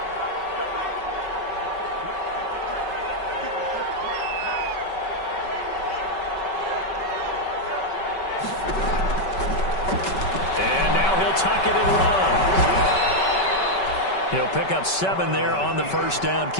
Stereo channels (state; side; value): late; right; 5.3 ms